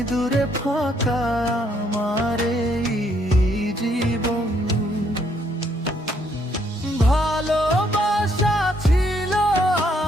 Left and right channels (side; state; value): both; normal; correlation 0.70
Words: দূরে ফাঁকা আমার এই জীবন। ভালোবাসা ছিল